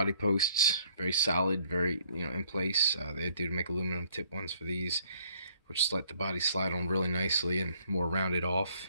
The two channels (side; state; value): both; inverted; correlation -0.62